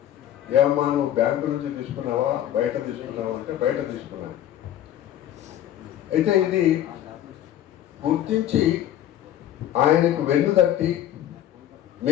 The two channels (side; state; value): right; quieter; 11.7 dB